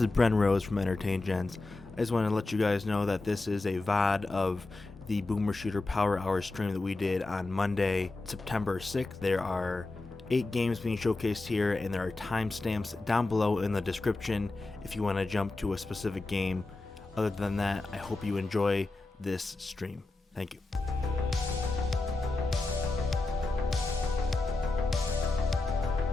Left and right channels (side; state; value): right; quieter; 3.2 dB